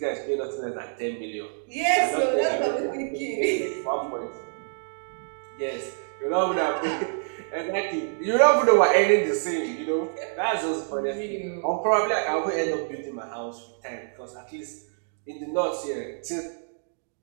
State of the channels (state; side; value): silent; left; digital silence